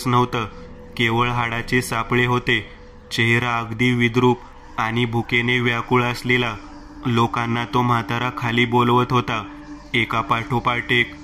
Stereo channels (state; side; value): identical; both; correlation 1.00